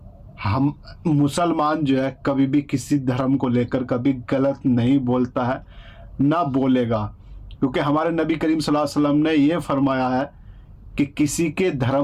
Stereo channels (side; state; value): both; identical; correlation 1.00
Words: हम मुसलमान जो है कभी भी किसी धर्म को लेकर कभी गलत नहीं बोलता है, ना बोलेगा, क्योंकि हमारे नबी करीम सल्लल्लाहु अलैहि वसल्लम ने ये फरमाया है कि किसी के